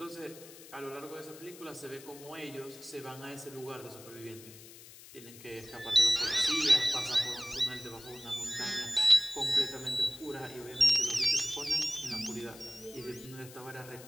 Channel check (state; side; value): noise; left; hiss, 18 dB below the sound